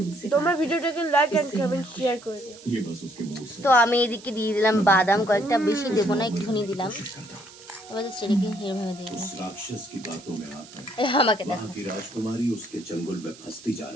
তোমরা बात ভিডিওটাকে লাইক এন্ড इससे কমেন্ট मैं শেয়ার করে দিও। ये बस उसके मूड से তো আমি এদিকে দিয়ে দিলাম বাদাম কয়েকটা, বেশি দেবো না, একটুখানি দিলাম। कोशिश करता हूँ। এবার সেটাকে এরভাবে দিয়ে দিলাম। उस राक्षस की बातों में आकर আমাকে দেখো। वहाँ की राजकुमारी उसके चंगुल में फंसती जा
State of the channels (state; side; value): noise; right; hiss, 20 dB below the sound